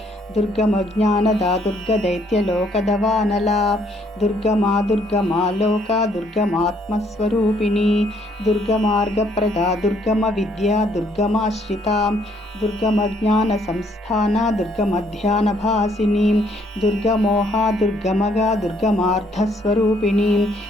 దుర్గమజ్ఞానదా దుర్గదైత్యలోకదవానలా దుర్గమా దుర్గమా Lokah దుర్గమాత్మస్వరూపిణి దుర్గమార్గప్రదా దుర్గమ Vidya దుర్గమాశ్రితా దుర్గమజ్ఞాన సంస్థాన దుర్గమధ్యానభాసిని దుర్గమోహా దుర్గమగా దుర్గమార్థస్వరూపిణి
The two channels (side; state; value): both; normal; correlation 0.67